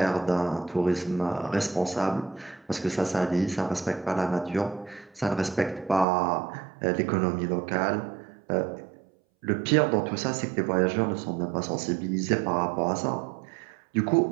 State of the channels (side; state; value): left; drops out; at 6.1 s